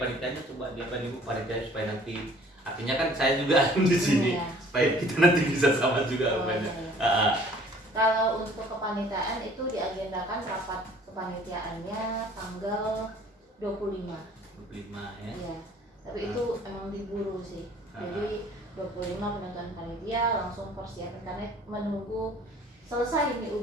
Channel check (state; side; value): normal; both; correlation 0.54